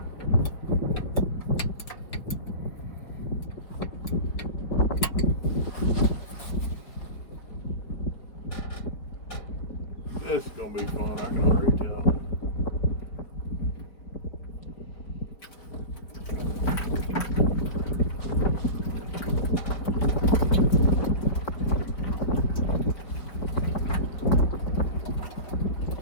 This is gonna be fun, I can already tell.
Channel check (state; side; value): late; right; 4.8 ms